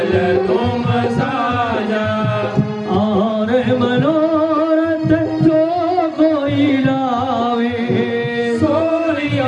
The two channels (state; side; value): identical; both; correlation 1.00